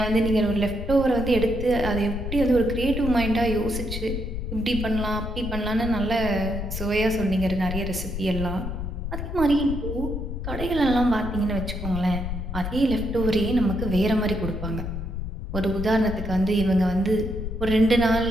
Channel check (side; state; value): left; noise; rumble, 5 dB below the sound